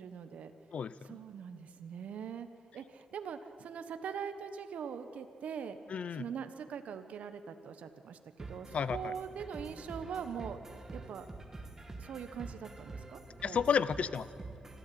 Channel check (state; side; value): normal; both; correlation 0.70